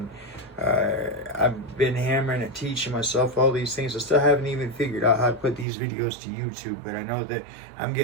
I've been hammering and teaching myself all these things. I still haven't even figured out how to put these videos to YouTube, but I know that I'm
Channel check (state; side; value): drops out; left; at 5.7 s